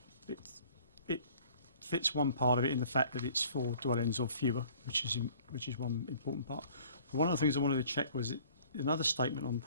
fits one part of it in the fact that it's 4 dwellings or fewer, which is one important part. One of the things I wanted to check was another statement on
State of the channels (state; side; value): inverted; both; correlation -0.53